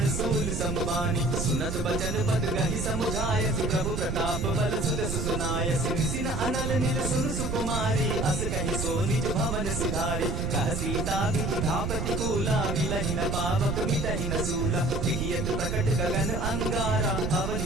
सूल समबानी। सुनत बचन पद गहि समुझायसि, प्रभु प्रताप बल सुदस सुनायसि। निसिन अनल नील सुन सुकुमारी, अस कहि सो निज भवन सिधारी। कह सीता विधा प्रतिकूला, मिलहि न पावक मिटहि न सूला। दिखियत प्रकट गगन अंगारा,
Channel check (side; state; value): right; noise; rumble, 1 dB below the sound